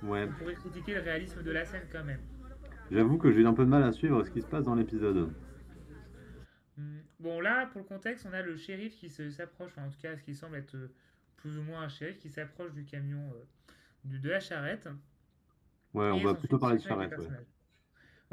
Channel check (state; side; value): identical; both; correlation 1.00